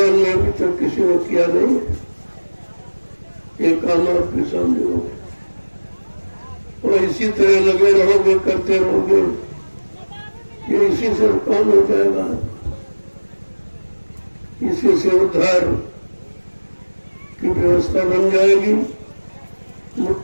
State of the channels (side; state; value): both; inverted; correlation -1.00